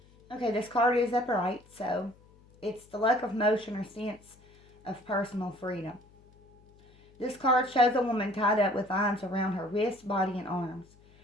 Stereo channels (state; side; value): noise; left; hum, 28 dB below the sound